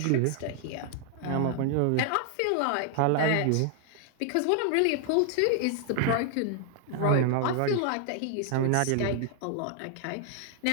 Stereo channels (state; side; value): different; both; correlation 0.00